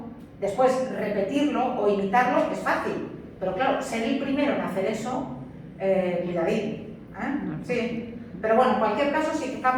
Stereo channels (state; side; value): identical; both; correlation 1.00